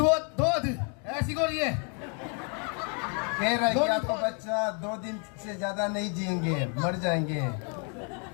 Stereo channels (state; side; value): quieter; right; 38.6 dB